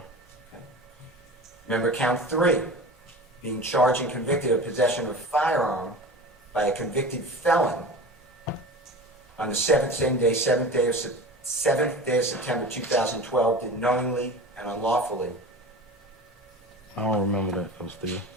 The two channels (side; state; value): both; normal; correlation 0.34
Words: Remember count 3, being charged and convicted of possession of a firearm by a convicted felon on the same day, 7th day of September 2012, did knowingly and unlawfully. I don't remember that, though, still.